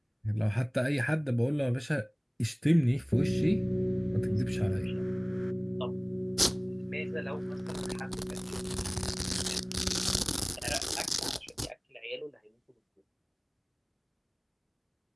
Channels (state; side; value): identical; both; correlation 1.00